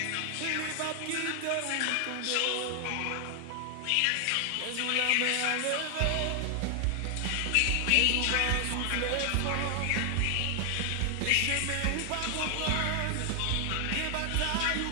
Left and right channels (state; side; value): different; both; correlation 0.00